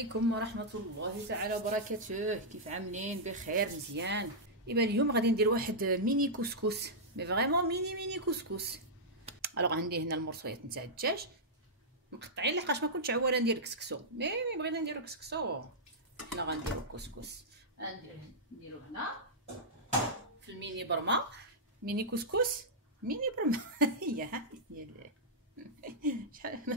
ورحمة الله تعالى وبركاته. كيف عاملين؟ بخير مزيان. ايوا اليوم غادي ندير واحد ميني كسكس، مي فريمون ميني كسكس. الوغ عندي هنا المرصويات نتاع الدجاج مقطعين لحقاش ما كنتش عواله ندير كسكسو، مي بغينا نديرو كسكسو. حنا غنديرو كسكس، نديرو هنا في الميني برما، ميني كسكس ميني برما. هي شحال ما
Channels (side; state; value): both; normal; correlation -0.10